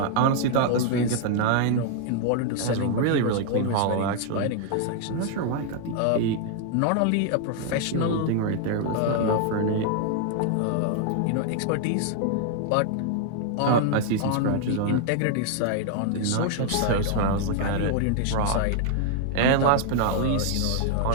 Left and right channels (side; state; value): both; different; correlation 0.00